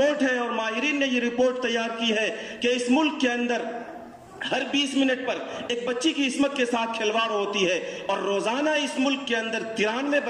ہے، اور ماہرین نے یہ رپورٹ تیار کی ہے کہ اس ملک کے اندر ہر 20 منٹ پر ایک بچی کی عصمت کے ساتھ کھلواڑ ہوتی ہے، اور روزانہ اس ملک کے اندر 93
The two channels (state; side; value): identical; both; correlation 1.00